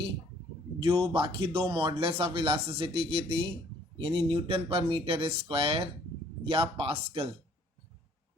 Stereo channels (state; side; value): normal; both; correlation 0.60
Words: जो बाकी 2 मॉडुलस ऑफ इलास्टिसिटी की थी, यानी न्यूटन पर मीटर स्क्वायर या पास्कल।